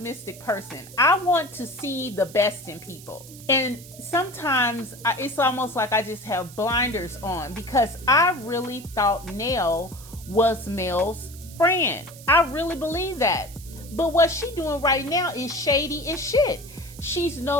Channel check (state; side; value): noise; right; hiss, 18 dB below the sound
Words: person. I want to see the best in people. And sometimes it's almost like I just have blinders on, because I really thought Niel was Mel's friend. I really believe that. But what she's doing right now is shady as shit.